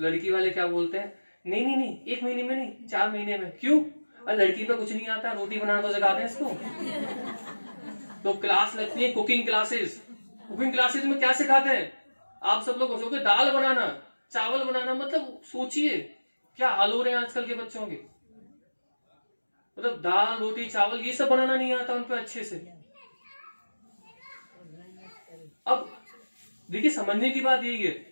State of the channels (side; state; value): both; inverted; correlation -1.00